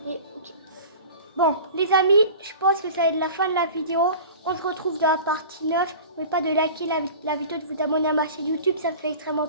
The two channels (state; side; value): inverted; both; correlation -0.38